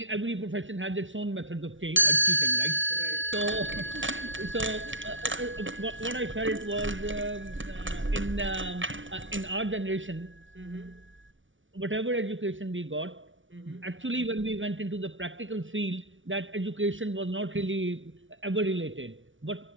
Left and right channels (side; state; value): left; late; 0.56 ms